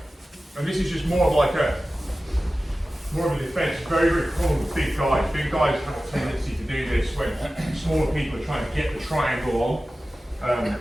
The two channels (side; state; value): both; normal; correlation 0.95